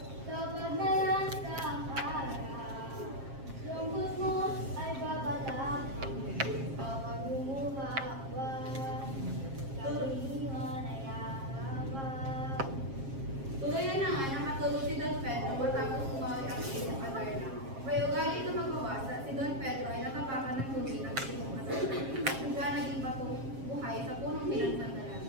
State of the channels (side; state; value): left; late; 7.5 ms